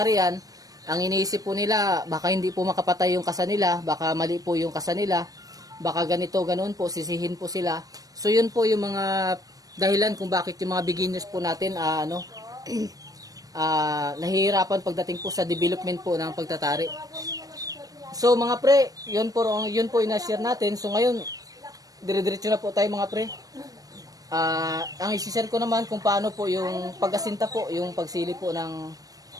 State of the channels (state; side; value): late; left; 0.18 ms